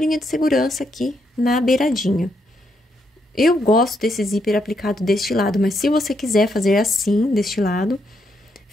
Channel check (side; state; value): both; normal; correlation 0.78